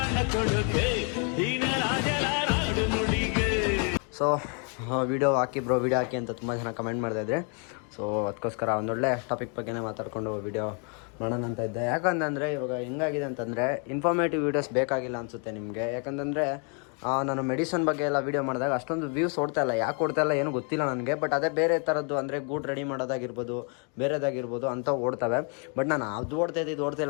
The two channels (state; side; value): quieter; right; 38.6 dB